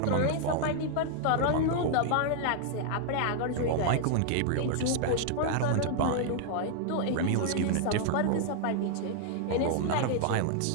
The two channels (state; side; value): different; both; correlation -0.01